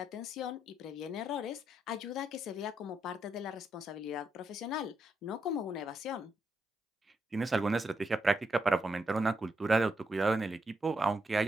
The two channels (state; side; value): normal; both; correlation 0.81